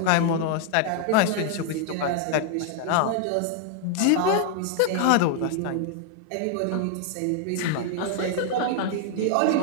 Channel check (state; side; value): different; both; correlation 0.00